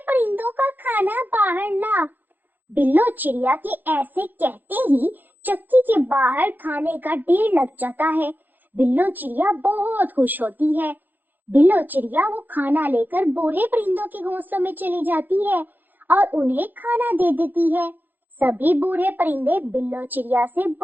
परिंदों का खाना बाहर ला। बिल्लो चिड़िया के ऐसे कहते ही चक्की के बाहर खाने का ढेर लग जाता है। बिल्लो चिड़िया बहुत खुश होती है। बिल्लो चिड़िया वो खाना लेकर बूढ़े परिंदों के घोंसलों में चली जाती है और उन्हें खाना दे देती है। सभी बूढ़े परिंदे बिल्लो चिड़िया से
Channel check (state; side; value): late; left; 0.083 ms